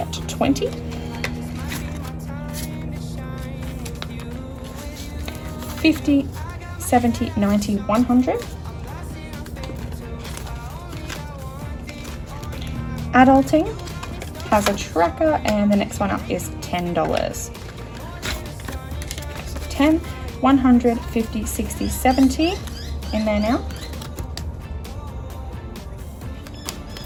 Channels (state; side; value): identical; both; correlation 1.00